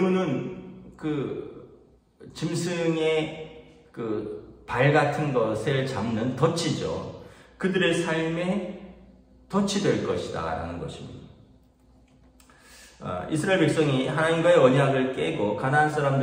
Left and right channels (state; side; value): identical; both; correlation 1.00